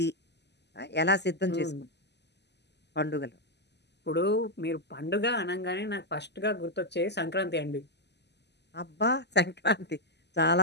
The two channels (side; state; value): right; late; 0.50 ms